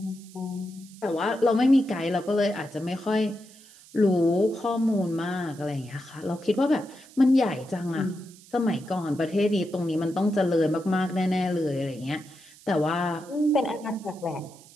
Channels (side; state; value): right; noise; hiss, 23 dB below the sound